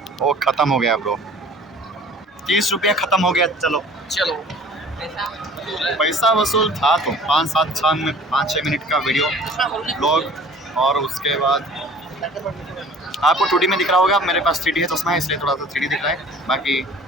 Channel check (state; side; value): normal; both; correlation 0.47